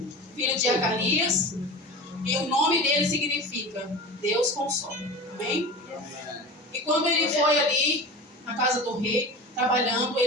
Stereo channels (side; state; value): both; normal; correlation 0.31